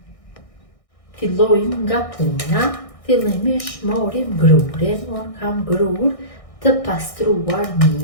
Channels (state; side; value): late; right; 1.6 ms